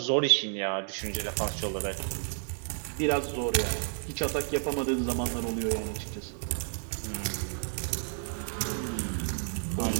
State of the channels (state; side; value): silent; left; 57 dB below the other